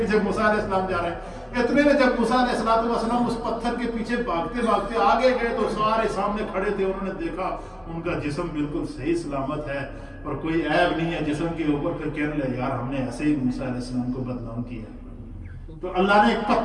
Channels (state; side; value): identical; both; correlation 1.00